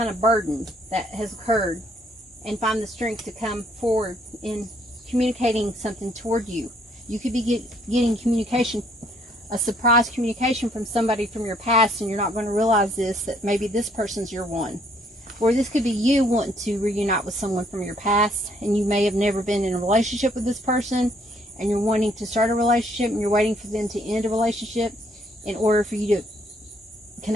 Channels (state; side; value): normal; both; correlation 0.66